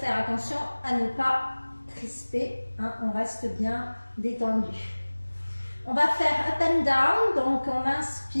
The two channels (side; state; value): both; inverted; correlation -1.00